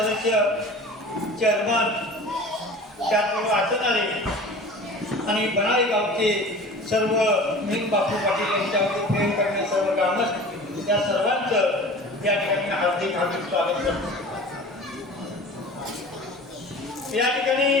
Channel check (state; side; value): normal; both; correlation 0.40